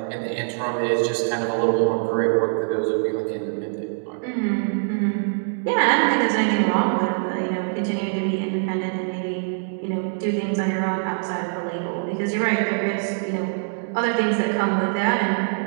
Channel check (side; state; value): left; silent; digital silence